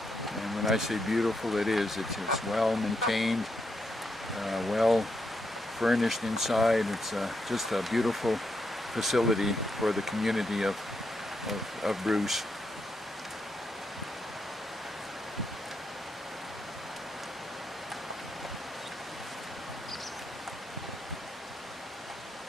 when I say beautiful, it is. It's well maintained, well furnished inside. It's just a beautiful facility for the community of Bruce.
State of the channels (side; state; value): both; normal; correlation 0.81